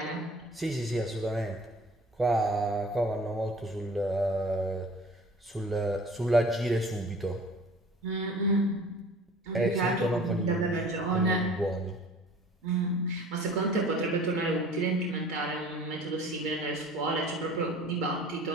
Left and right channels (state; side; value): normal; both; correlation 0.47